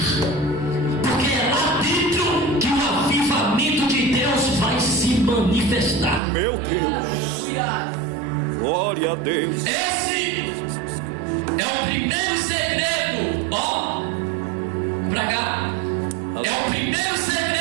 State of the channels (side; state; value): left; drops out; at 6.2 s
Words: Porque é lá dentro que o avivamento de Deus vai se manifestar. Meu Deus. Glória a Deus. Esse é o primeiro segredo. Ó, pra cá. É o primeiro